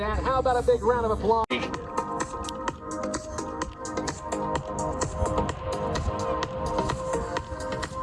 How about a big round of applause?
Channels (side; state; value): both; identical; correlation 1.00